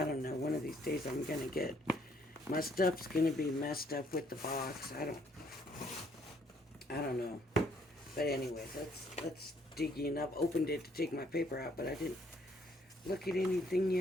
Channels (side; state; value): both; normal; correlation 0.66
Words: don't know. One of these days, I'm gonna get my stuff's gonna be messed up with the box. I don't know. But anyways, let's dig in. I've opened it to take my paper out, but I didn't look at anything